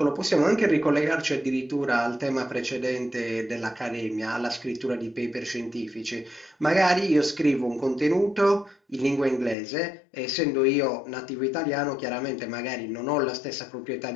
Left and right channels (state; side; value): drops out; right; at 9.6 s